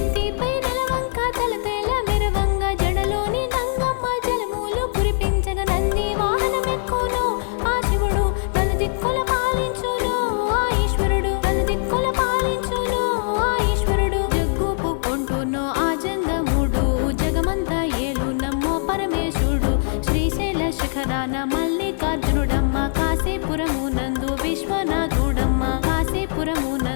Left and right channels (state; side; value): silent; right; digital silence